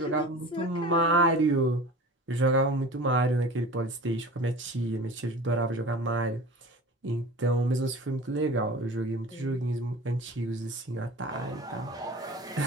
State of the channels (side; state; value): both; normal; correlation 0.38